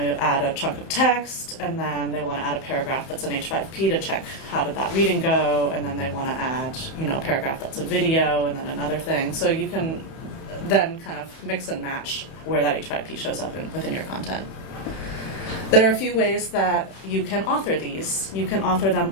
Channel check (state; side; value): late; right; 31 ms